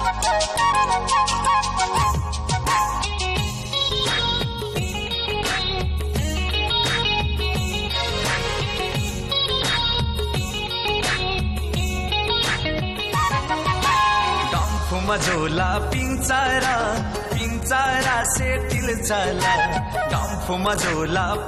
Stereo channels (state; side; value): identical; both; correlation 1.00